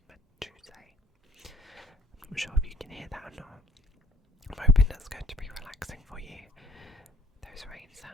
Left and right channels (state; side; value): normal; both; correlation 0.57